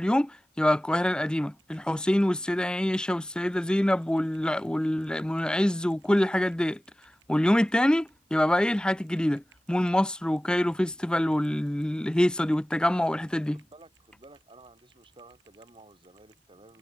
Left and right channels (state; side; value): normal; both; correlation 0.96